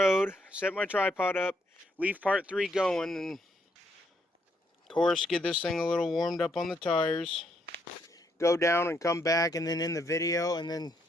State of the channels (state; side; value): normal; both; correlation 0.74